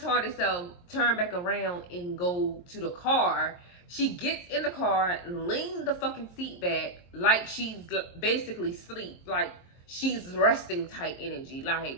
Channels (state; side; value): late; right; 23 ms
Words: self turn back around and go to the car. She gets in the car, lean the fucking seat back like she's basically asleep. Like she's resting type energy.